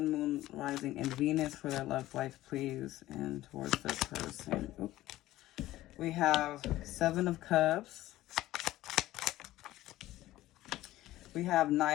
Moon, Rising, and Venus for their love life, please, and towards their person? Oop. We have Seven of Cups. We have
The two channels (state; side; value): quieter; right; 15.7 dB